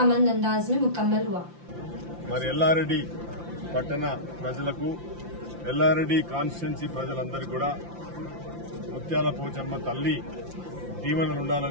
अंदाज में मुकम्मल हुआ। మరి ఎల్లారెడ్డి పట్టణ ప్రజలకు ఎల్లారెడ్డి కాన్స్టిట్యున్సీ ప్రజలందరికీ కూడా ముత్యాల పోచమ్మ తల్లి దీవెనలు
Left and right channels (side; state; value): left; late; 5.8 ms